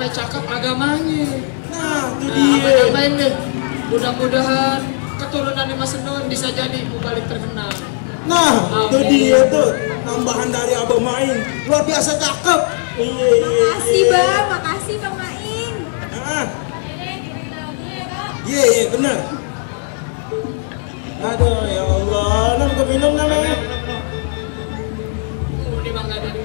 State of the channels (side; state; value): right; silent; 59 dB below the other